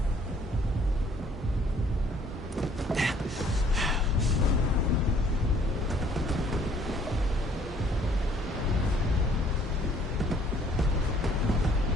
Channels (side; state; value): both; normal; correlation 0.60